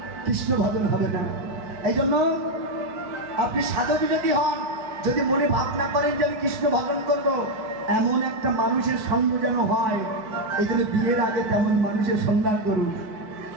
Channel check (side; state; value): left; late; 4.6 ms